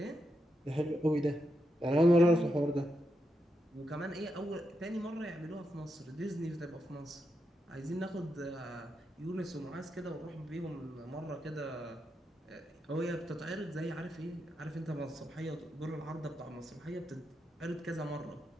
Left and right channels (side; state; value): both; normal; correlation 0.85